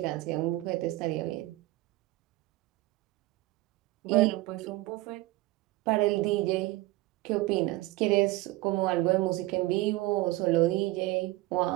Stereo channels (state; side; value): quieter; left; 19.0 dB